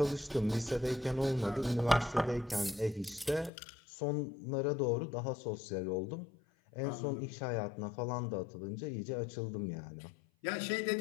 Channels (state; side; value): drops out; right; at 3.5 s